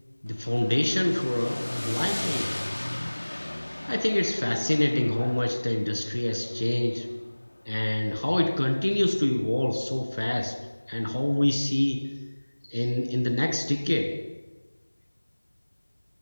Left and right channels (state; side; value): inverted; both; correlation -1.00